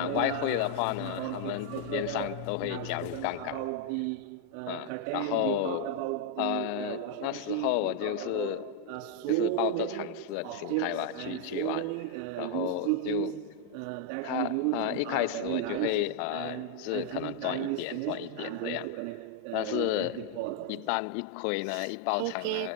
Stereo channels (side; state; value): both; different; correlation 0.00